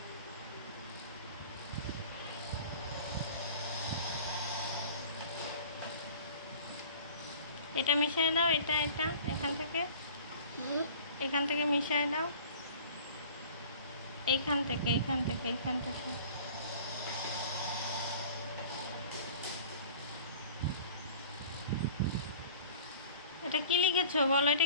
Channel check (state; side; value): inverted; both; correlation -0.44